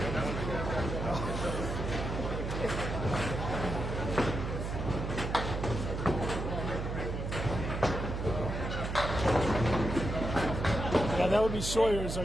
Yeah, that would be Sawyer's,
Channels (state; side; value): noise; right; hum, 3 dB below the sound